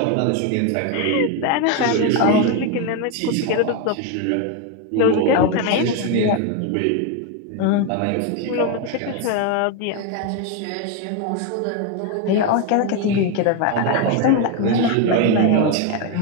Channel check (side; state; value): both; different; correlation 0.02